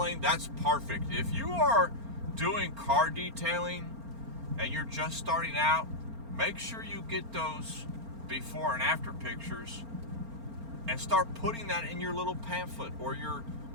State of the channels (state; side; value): late; left; 4.4 ms